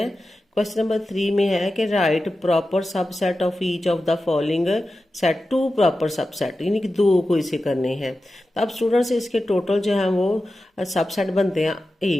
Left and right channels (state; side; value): normal; both; correlation 0.93